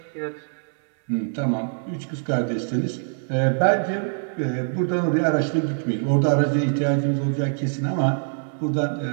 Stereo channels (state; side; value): silent; left; digital silence